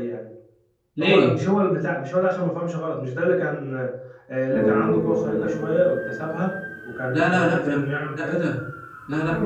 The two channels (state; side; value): identical; both; correlation 1.00